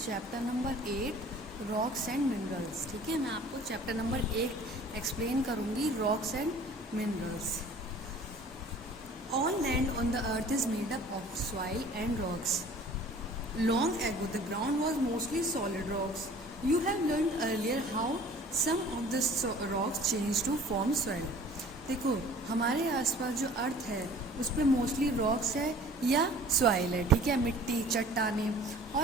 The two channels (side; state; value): both; normal; correlation 0.48